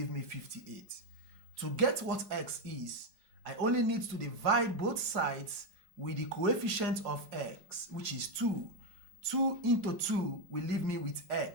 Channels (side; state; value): left; late; 4.8 ms